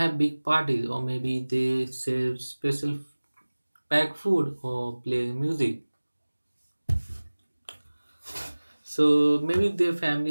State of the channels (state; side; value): inverted; both; correlation -1.00